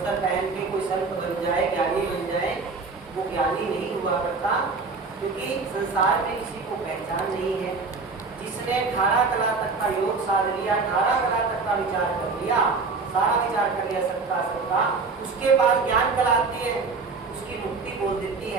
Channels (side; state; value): left; quieter; 4.3 dB